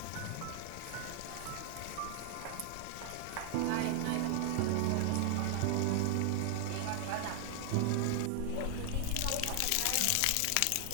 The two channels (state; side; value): different; both; correlation 0.00